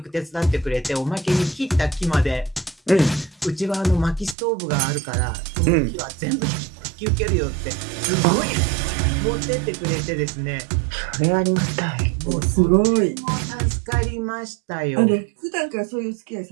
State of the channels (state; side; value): drops out; left; at 4.4 s